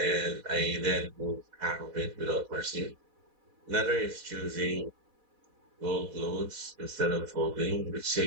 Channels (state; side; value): late; left; 4.1 ms